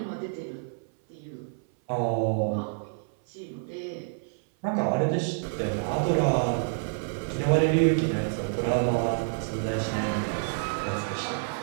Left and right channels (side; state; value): left; silent; 59 dB below the other